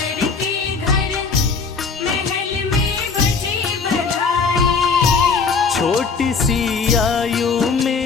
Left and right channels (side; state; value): right; quieter; 4.9 dB